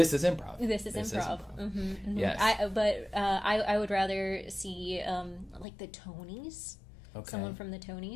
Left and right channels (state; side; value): drops out; right; at 5.7 s